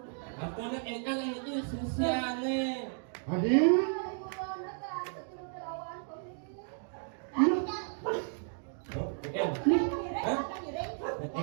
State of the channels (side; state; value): left; silent; 55 dB below the other